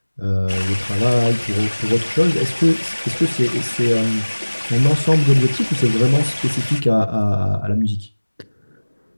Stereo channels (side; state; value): both; inverted; correlation -1.00